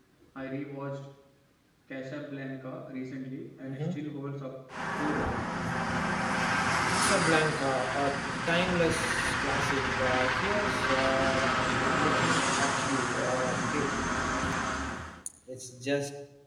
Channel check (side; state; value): both; identical; correlation 1.00